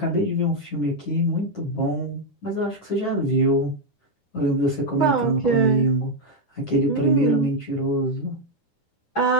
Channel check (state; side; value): late; right; 9.8 ms